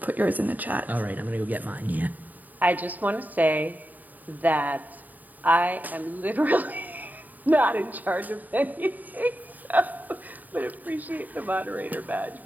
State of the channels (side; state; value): left; late; 0.083 ms